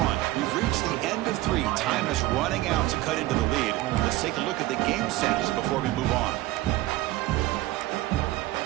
We've reached the end of 3. Time is running out to cut into the lead. Let's take a look at the game sets before we move on.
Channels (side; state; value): left; quieter; 17.4 dB